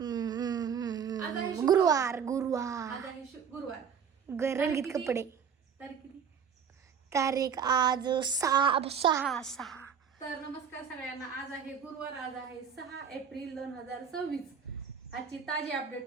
आज आहे शुक्रवार. गुरुवार गुरुवार आज आहे गुरुवार. रंगीत किती? कपडे तारीख किती? तारीख आज 6 तर नमस्कार सगळ्यांना. आज आहे गुरुवार. आज आहे 6 एप्रिल 2026. आजची ताजी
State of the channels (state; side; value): quieter; left; 7.1 dB